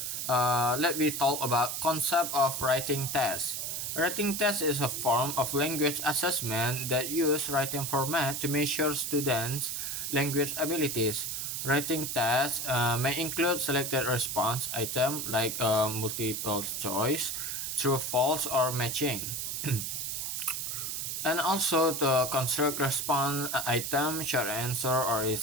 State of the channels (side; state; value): right; noise; hiss, 3 dB below the sound